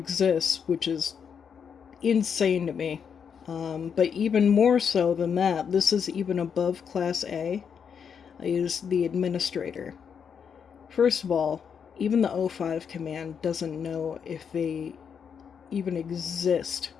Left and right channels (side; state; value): right; quieter; 7.0 dB